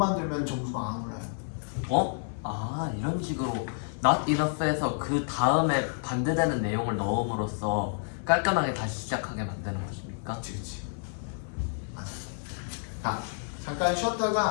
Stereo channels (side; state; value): right; silent; 58 dB below the other